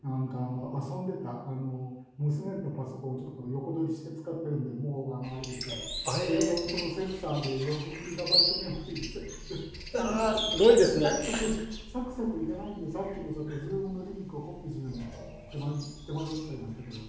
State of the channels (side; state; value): both; identical; correlation 1.00